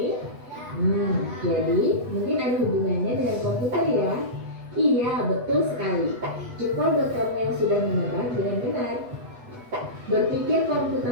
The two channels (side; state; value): left; late; 8.1 ms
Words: Jadi mungkin ada hubungannya dengan komputer ya? Iya, betul sekali. Jempol buat kamu yang sudah menebak dengan benar. Berpikir